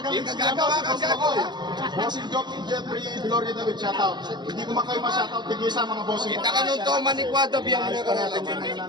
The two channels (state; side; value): late; left; 0.21 ms